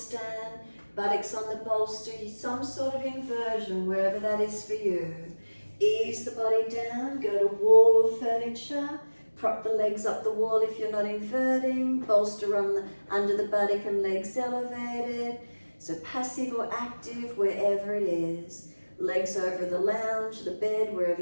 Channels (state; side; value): inverted; both; correlation -1.00